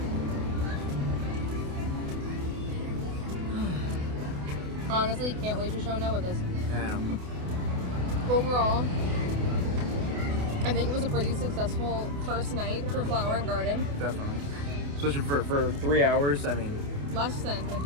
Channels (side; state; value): left; late; 28 ms